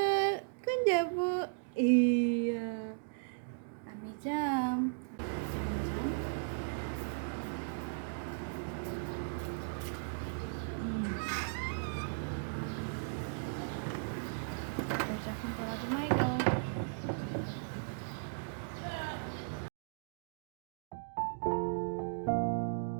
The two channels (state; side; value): silent; left; digital silence